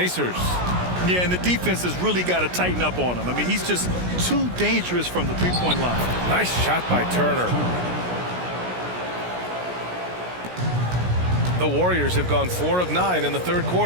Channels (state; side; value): late; left; 17 ms